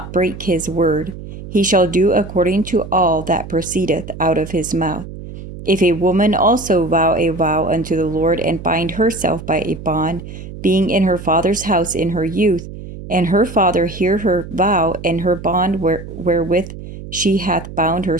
break his word. He shall do according to all that proceedeth out of his mouth. If a woman also vow a vow unto the Lord, and bind herself by a bond, being in her father's house in her youth, and her father hear her vow and her bond wherewith she hath bound her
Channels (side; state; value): right; noise; hum, 12 dB below the sound